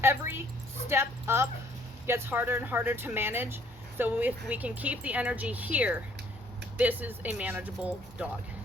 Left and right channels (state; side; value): normal; both; correlation 0.61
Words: Every step up gets harder and harder to manage, so if we can keep the energy here, this is a manageable dog.